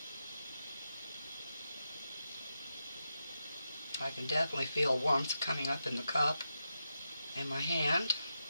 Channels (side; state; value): both; inverted; correlation -0.87